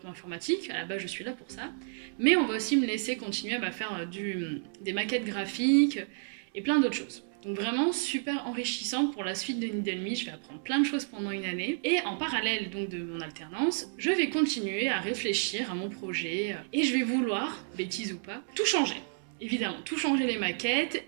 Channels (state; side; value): silent; left; 57 dB below the other